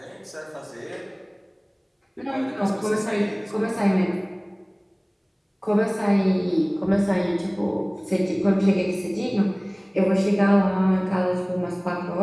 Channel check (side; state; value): both; identical; correlation 1.00